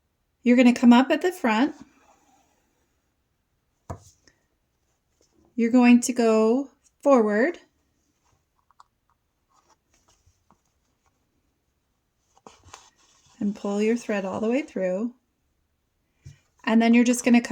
You're going to come up at the front. You're going to go forward. and pull your thread all the way through. And then you're just going to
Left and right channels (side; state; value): both; identical; correlation 1.00